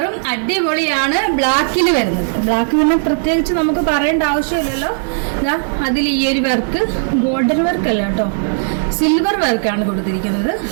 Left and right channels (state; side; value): silent; left; 66 dB below the other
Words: അടിപൊളിയാണ്. ബ്ലാക്കിൽ വരുന്നത്. ബ്ലാക്ക് പിന്നെ പ്രത്യേകിച്ച് നമുക്ക് പറയേണ്ട ആവശ്യമില്ലല്ലോ. അതിൽ ഈ ഒരു വർക്ക് ഗോൾഡൻ വർക്ക് അല്ല കേട്ടോ, സിൽവർ വർക്കാണ് കൊടുത്തിരിക്കുന്നത്.